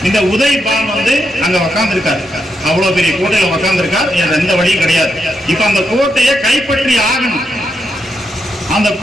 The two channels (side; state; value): both; normal; correlation 0.82